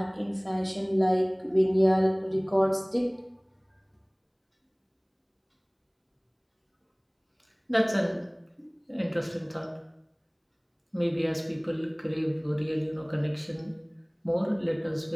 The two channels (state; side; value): identical; both; correlation 1.00